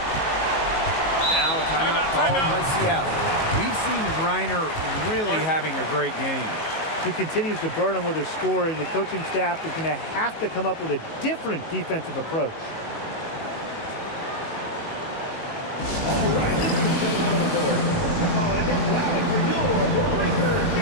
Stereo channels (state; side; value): late; right; 19 ms